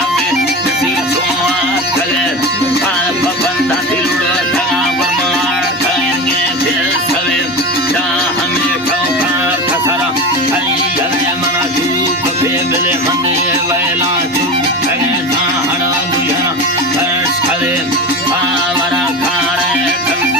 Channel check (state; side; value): normal; both; correlation 0.26